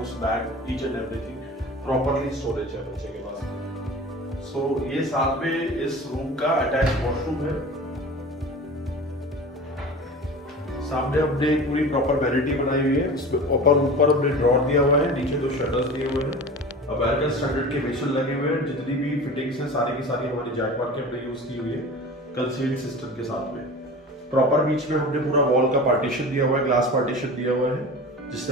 bag, each and everything properly storage है बच्चे के पास। सो ये साथ में इस रूम का अटैच वॉशरूम है। सामने हमने पूरी प्रॉपर वैनिटी बनाई हुई है, इसमें ऊपर हमने ड्रॉर दिया हुआ है, नीचे 2 शटर्स दिए हुए हैं, अमेरिकन स्टैंडर्ड के मेशल लगे हुए हैं। जितनी भी फिटिंग्स हैं सारी की सारी हमारी जैकवार के हमने यूज की हुई है कंसील्ड सिस्टम के साथ में। प्रॉपर बीच में हमने पूरा वॉल का पार्टीशन दिया हुआ है, ग्लास पार्टीशन दिया हुआ है, जिससे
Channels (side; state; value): both; normal; correlation 0.36